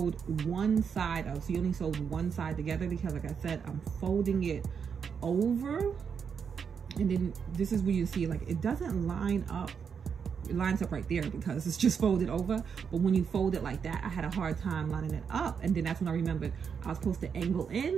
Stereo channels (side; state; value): left; quieter; 6.7 dB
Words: one side of. So you only sewed one side together, because like I said, I'm folding it over. And then this is where you see, like, it doesn't line up. It lines up right there because it's just folded over. But when you fold it like that, I had a hard time lining it up. And then that's when I remembered I was supposed to angle